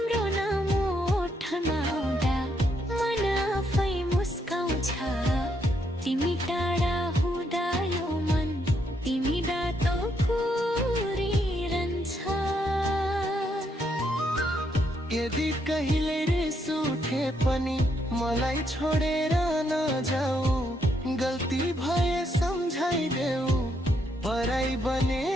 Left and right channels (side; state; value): both; normal; correlation 0.76